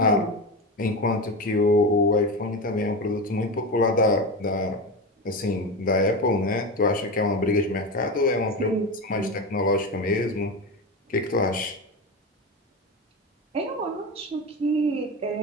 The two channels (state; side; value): normal; both; correlation 0.21